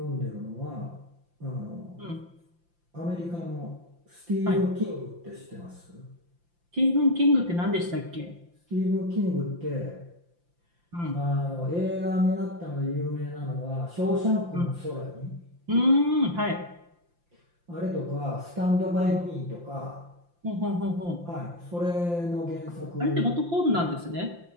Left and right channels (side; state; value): left; late; 5.8 ms